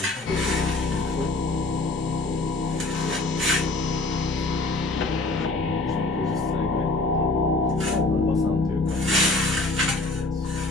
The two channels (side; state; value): right; quieter; 3.1 dB